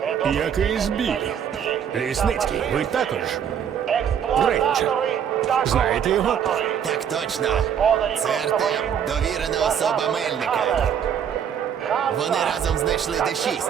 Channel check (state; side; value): quieter; left; 8.4 dB